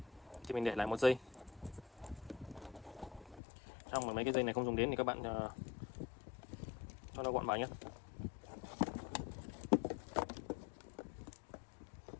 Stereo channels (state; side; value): drops out; right; at 3.4 s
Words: thì mình để lại một dây. Trong mấy cái dây này không dùng đến thì các bạn cho nó gọn vào nhé.